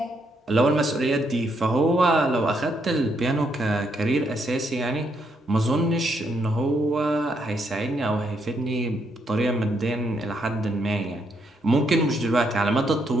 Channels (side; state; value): both; normal; correlation 0.75